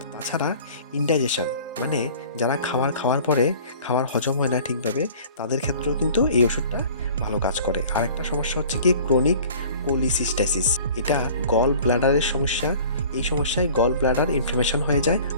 তাছাড়া ইনডাইজেশন, মানে যারা খাওয়ার পরে খাবার হজম হয় না ঠিকভাবে, তাদের ক্ষেত্রেও কিন্তু এই ওষুধটা ভালো কাজ করে। আরেকটা সমস্যা হচ্ছে কি, ক্রনিক কোলিসিস্টাইসিস। এটা গল ব্লাডারের সমস্যা। এই সমস্যায় গল ব্লাডার ইনফ্লামেশন হয়ে যায়,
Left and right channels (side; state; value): both; inverted; correlation -0.47